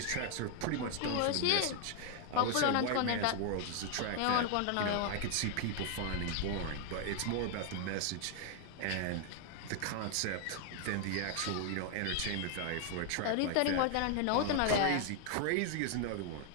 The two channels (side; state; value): both; different; correlation 0.00